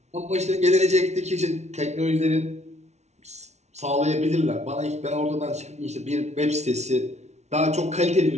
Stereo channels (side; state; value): left; late; 0.32 ms